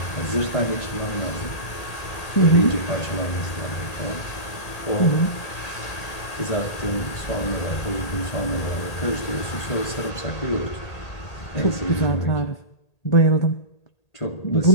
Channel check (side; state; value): right; late; 1.8 ms